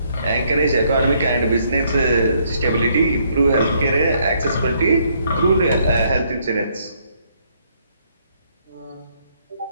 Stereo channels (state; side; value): inverted; both; correlation -0.70